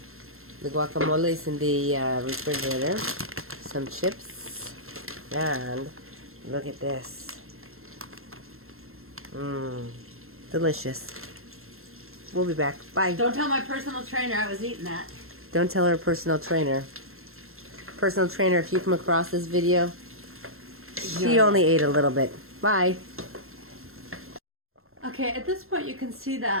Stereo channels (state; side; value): late; left; 0.62 ms